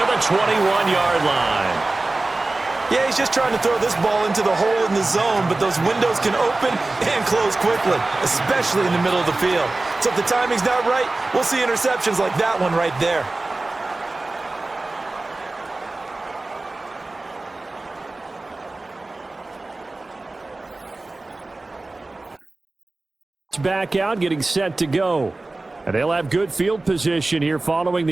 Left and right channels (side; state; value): left; quieter; 3.1 dB